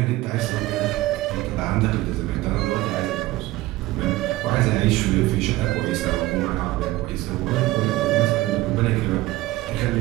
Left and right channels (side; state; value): left; quieter; 18.1 dB